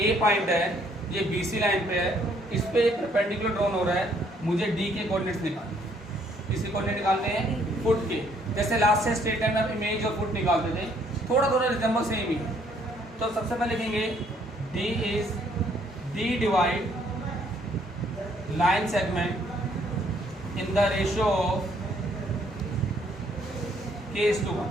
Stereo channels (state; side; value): normal; both; correlation 0.66